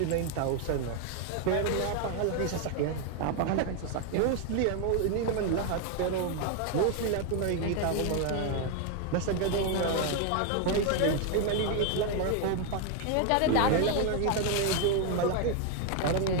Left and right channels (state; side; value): different; both; correlation 0.01